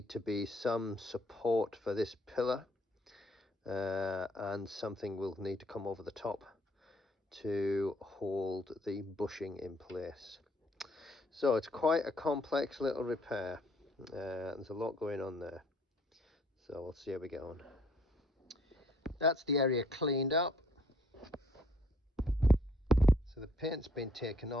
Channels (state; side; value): normal; both; correlation 0.63